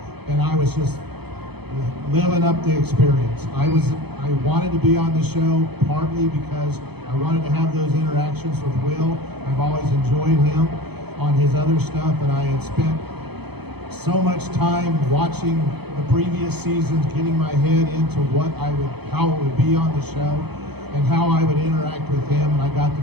and I was just living up the experience. I wanted to be on the show partly because I wanted to have those interactions with Will. I've always enjoyed him on his other stuff, and I had spent so much time watching the previous seasons, getting my head into how it would be on the show and how I would interact with him, and I got to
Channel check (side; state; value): left; late; 0.98 ms